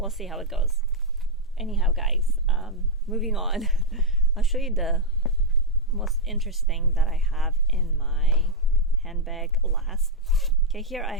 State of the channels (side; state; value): both; normal; correlation -0.01